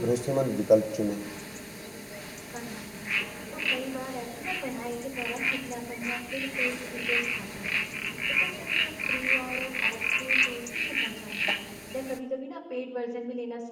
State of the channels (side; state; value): both; identical; correlation 1.00